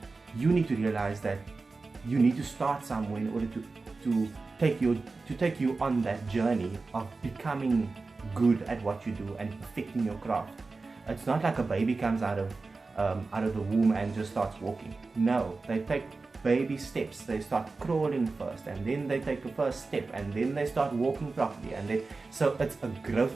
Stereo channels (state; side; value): quieter; left; 3.9 dB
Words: you need to realize that you need to start somewhere in order to take you on that journey of becoming good at what you do and perfecting your craft. It's not like a baby comes out of the womb and just starts walking. No, they take baby steps. They start crawling first, and then they take the first step, and then they start walking properly, so it's a